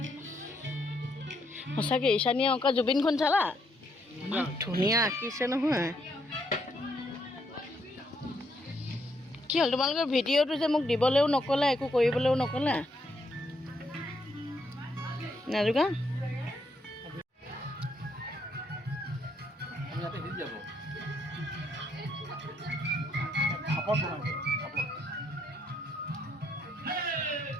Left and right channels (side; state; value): both; normal; correlation 0.74